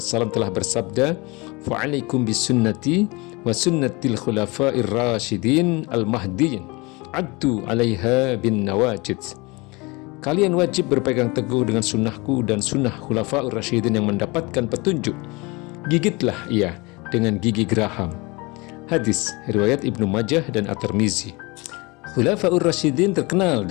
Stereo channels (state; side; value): quieter; right; 25.7 dB